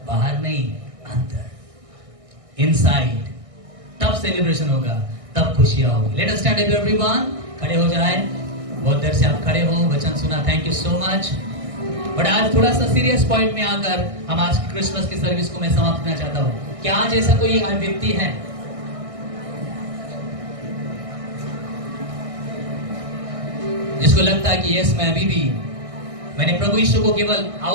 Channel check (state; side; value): late; left; 1.6 ms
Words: बाहर नहीं, अंदर, इनसाइड। तब सेलिब्रेशन होगा, तब खुशियां होगी। Let us stand up everyone. खड़े हो जाए। बहुत देर से आप खड़े हो, वचन सुना, thank you so much. But आज थोड़ा सा सीरियस पॉइंट में आकर हम आज की क्रिसमस की सर्विस को मैं समाप्त करना चाहता हूं। क्या आज ऐसा कोई व्यक्ति है जिसको लगता है कि यस, मैं अभी भी मैंने प्रभु यीशु को केवल